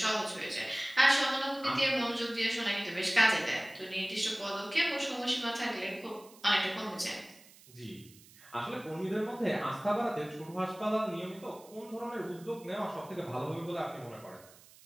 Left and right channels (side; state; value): right; noise; hiss, 23 dB below the sound